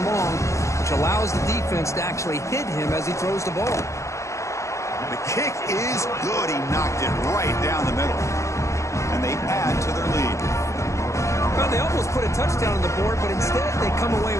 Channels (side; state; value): right; late; 0.14 ms